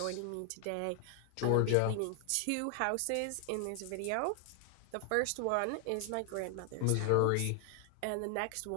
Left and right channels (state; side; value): different; both; correlation 0.00